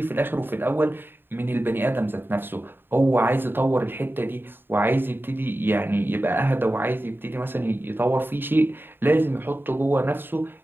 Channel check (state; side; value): late; left; 0.098 ms